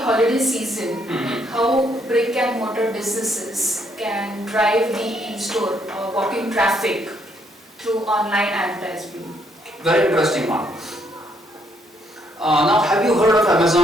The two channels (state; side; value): normal; both; correlation 0.71